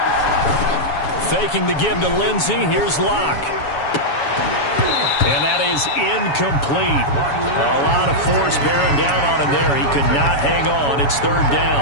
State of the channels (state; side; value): late; right; 7.1 ms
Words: Faking the give to Lindsey. Here's Locke. And that is incomplete. A lot of force bearing down on him there. He could not hang on. It's 3rd